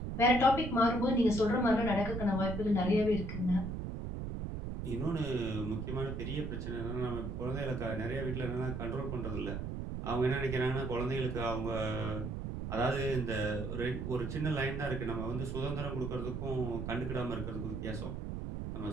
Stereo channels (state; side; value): noise; right; rumble, 4 dB below the sound